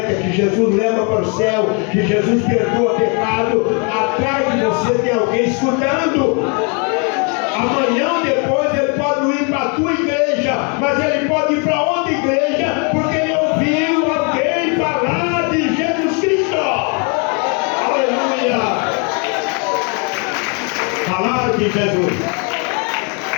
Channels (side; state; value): right; quieter; 35.9 dB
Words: que Jesus leva para o céu, que Jesus perdoa pecado, atrás de você tem alguém escutando. Amanhã ou depois ele pode ir para a tua igreja, mas ele pode ir para outra igreja, porque ele ouviu alguém falar de Jesus Cristo. Aleluia! Falar de Jesus.